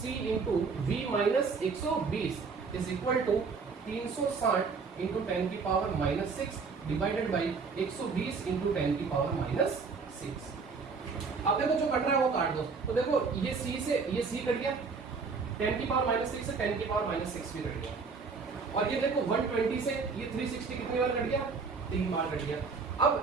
into V minus 120 is equal to 360 into 10 की power minus 6 divided by 120 into 10 की पावर माइनस 6। अब देखो जो कट रहा है वो काट दो, तो देखो ये C कट गया, 10 की पावर माइनस 6 से 10 की पावर माइनस 6 भी कट गया, और ये देखो 120 से ये 360 कितनी बार कट गया, 3 बार कट गया।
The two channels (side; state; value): left; quieter; 4.9 dB